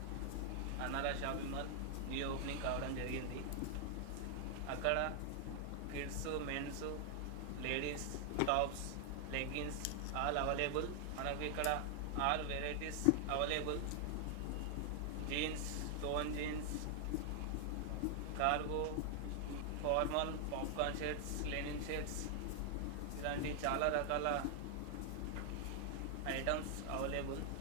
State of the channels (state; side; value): different; both; correlation 0.00